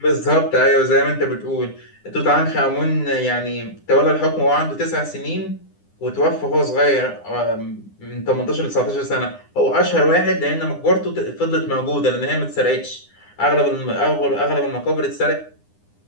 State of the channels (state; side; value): late; right; 9.9 ms